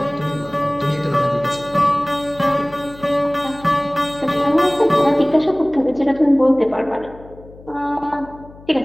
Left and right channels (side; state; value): left; noise; hum, 21 dB below the sound